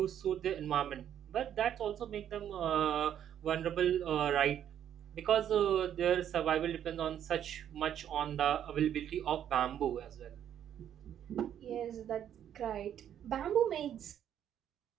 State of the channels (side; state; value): left; quieter; 10.0 dB